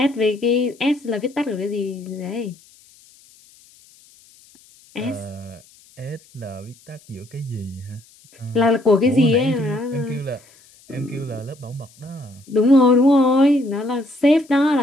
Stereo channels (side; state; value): left; noise; hiss, 28 dB below the sound